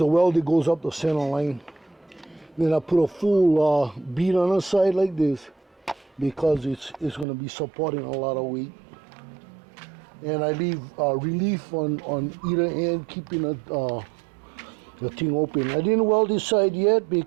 weld that goes up the center line. Then I put a full bead on the side like this because it's going to be supporting a lot of weight. And I leave relief on either end, keeping the thing open. I didn't weld this side yet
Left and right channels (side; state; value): left; drops out; at 7.2 s